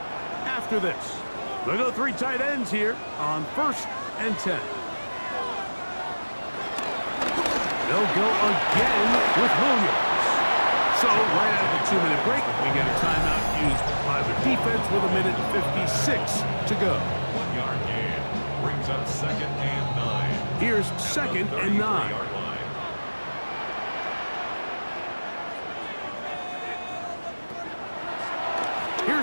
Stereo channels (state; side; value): inverted; both; correlation -1.00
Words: after this. They'll go 3 tight ends here on first and 10. They'll go again with Williams. So right out of the 2-minute break, we get a timeout used by the defense with a minute and 56 to go. 1-yard gain brings up second and 9. Here's second and 9.